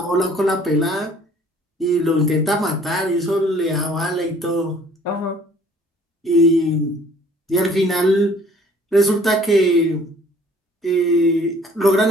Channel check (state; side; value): normal; both; correlation 0.55